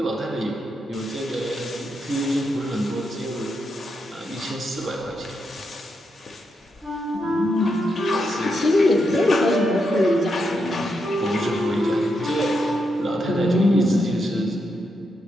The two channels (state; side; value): normal; both; correlation 0.83